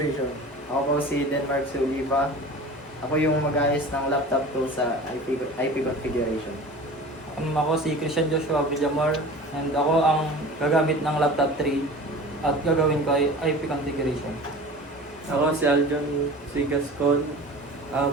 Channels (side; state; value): both; normal; correlation 0.38